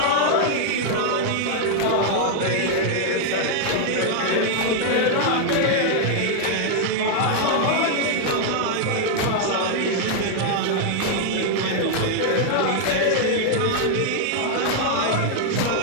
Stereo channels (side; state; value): both; different; correlation 0.00